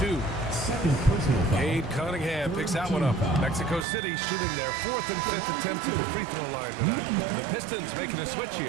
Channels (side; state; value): left; drops out; at 3.9 s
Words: 2. Cade Cunningham picks that one up. Mexico City shooting their 4th and 5th attempts at the free throw line tonight. The Pistons making a switch